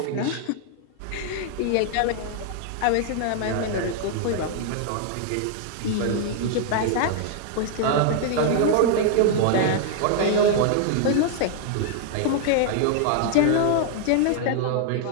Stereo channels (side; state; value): both; different; correlation 0.00